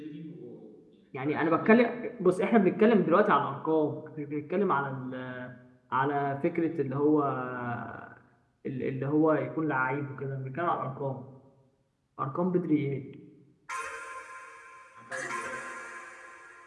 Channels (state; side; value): identical; both; correlation 1.00